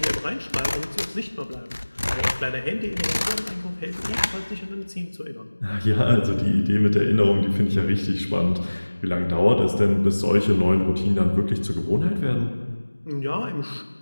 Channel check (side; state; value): both; inverted; correlation -1.00